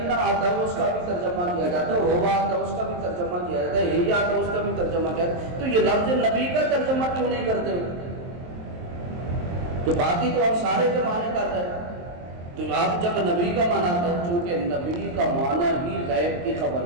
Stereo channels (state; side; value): late; left; 23 ms